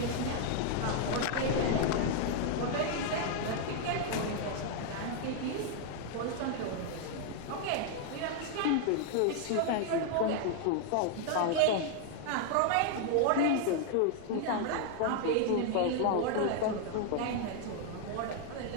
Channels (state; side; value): different; both; correlation 0.00